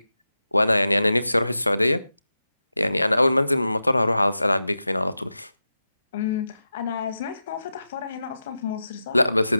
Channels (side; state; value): both; inverted; correlation -0.92